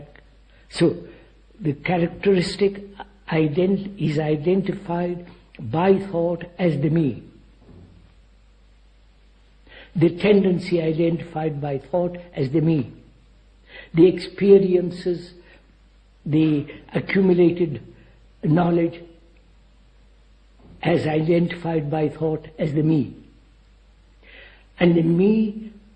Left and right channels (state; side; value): identical; both; correlation 1.00